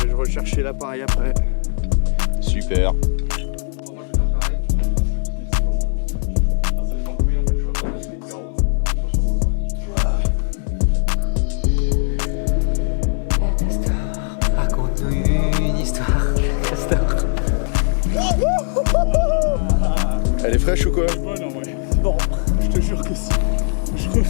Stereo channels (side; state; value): right; silent; digital silence